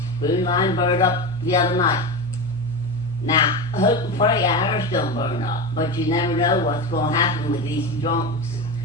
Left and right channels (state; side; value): normal; both; correlation 0.21